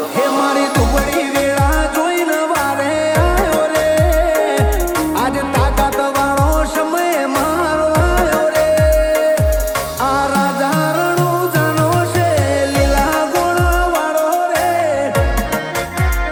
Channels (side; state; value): both; identical; correlation 1.00